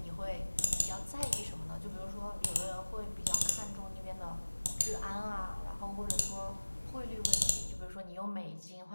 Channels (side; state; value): both; inverted; correlation -1.00